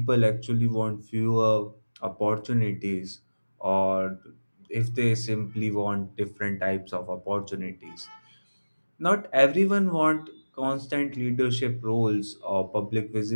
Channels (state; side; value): inverted; both; correlation -1.00